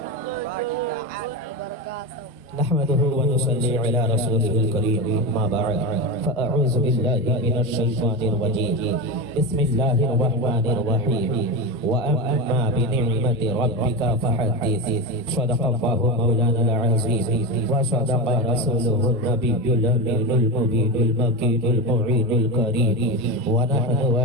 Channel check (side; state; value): both; normal; correlation 0.19